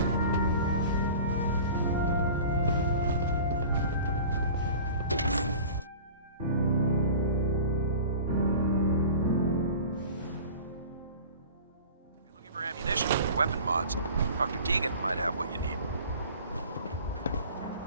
Ammunition, weapon mods. Dr. Deegan might have what you need.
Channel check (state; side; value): inverted; both; correlation -0.41